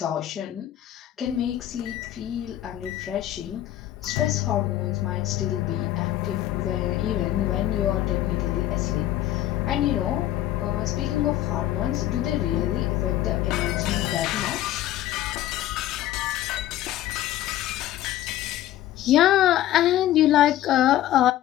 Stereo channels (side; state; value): right; quieter; 13.4 dB